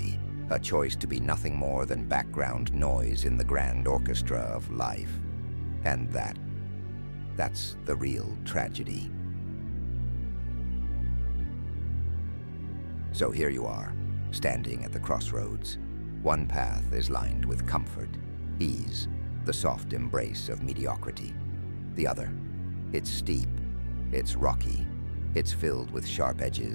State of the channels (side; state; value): both; inverted; correlation -1.00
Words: A choice to be nothing more than background noise in the grand orchestra of life. And that's the real tragedy. So here you are, standing at the crossroads. One path is lined with comfort, ease, the soft embrace of mediocrity. The other, it's steep, it's rocky, it's filled with sharp